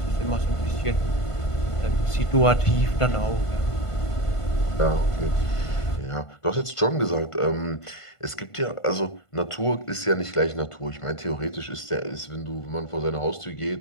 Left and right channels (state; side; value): late; right; 1.5 ms